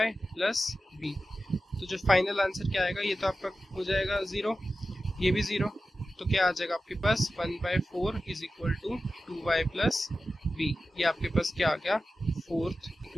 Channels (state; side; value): normal; both; correlation 0.93